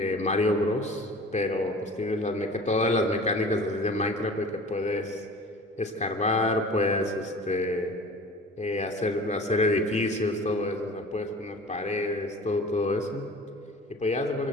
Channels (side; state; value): both; normal; correlation 0.42